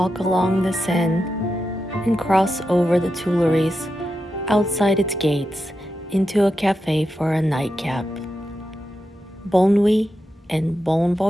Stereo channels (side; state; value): both; normal; correlation 0.88